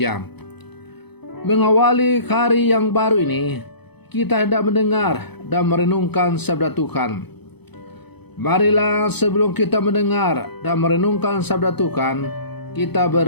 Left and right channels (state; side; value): late; right; 0.98 ms